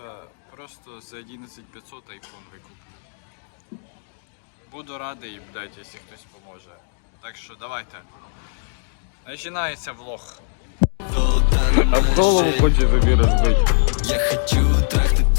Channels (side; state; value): right; silent; digital silence